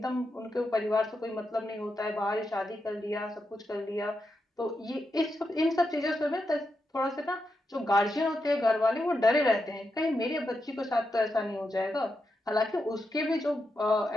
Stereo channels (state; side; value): normal; both; correlation 0.85